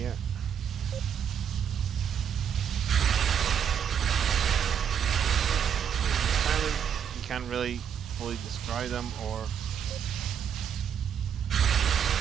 Can't really fully destroy them or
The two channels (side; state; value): left; quieter; 8.2 dB